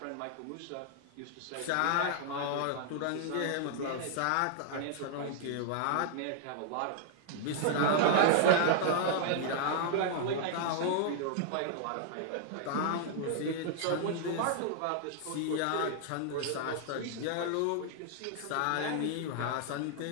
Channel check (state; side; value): different; both; correlation -0.01